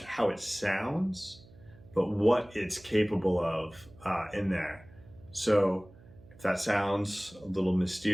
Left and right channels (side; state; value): right; noise; hum, 23 dB below the sound